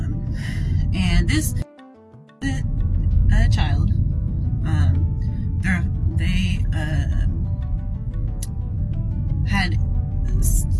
And this child, they had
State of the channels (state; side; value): identical; both; correlation 1.00